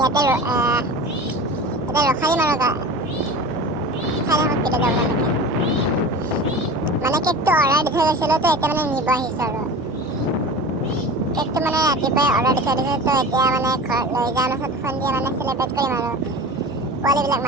ৰখাই দিম আৰু চাই থাকক কেতিয়া যাব নেকি। মানে কেকটো অৰ্ডাৰ দি থৈ গৈছিলোঁ, তো এতিয়া মানে নিব আহিছোঁ আৰু কেকটো মানে ৰাতিপুৱাই অৰ্ডাৰ দি থৈ দিছোঁ। তো এতিয়া মানে ঘৰত লৈ যাওঁ, তাৰপিছত সন্ধিয়া মানে চেলিব্ৰেট কৰিম আৰু পোৱালিবিলাক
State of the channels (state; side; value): normal; both; correlation 0.35